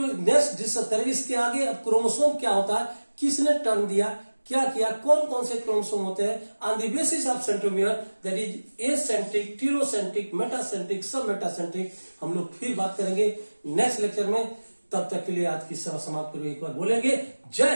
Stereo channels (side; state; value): both; inverted; correlation -1.00